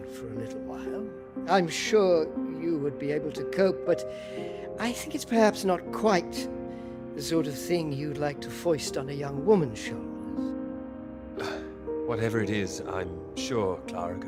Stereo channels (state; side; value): identical; both; correlation 1.00